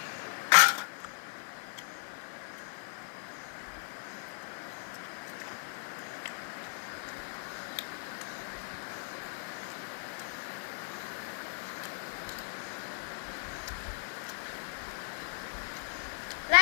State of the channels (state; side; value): silent; right; digital silence